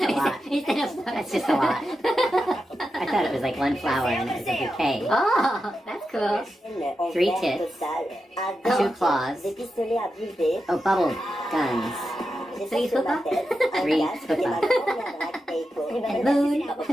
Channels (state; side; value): normal; both; correlation 0.89